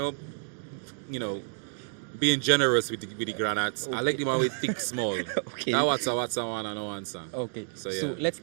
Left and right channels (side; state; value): left; silent; 55 dB below the other